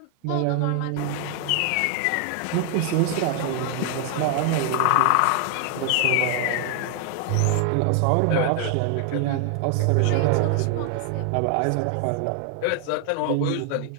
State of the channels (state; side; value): different; both; correlation 0.00